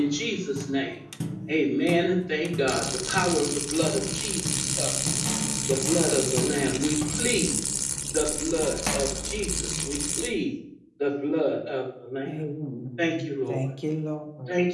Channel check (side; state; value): both; identical; correlation 1.00